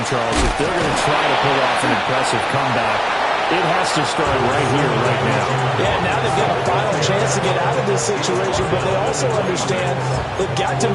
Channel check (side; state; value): both; identical; correlation 1.00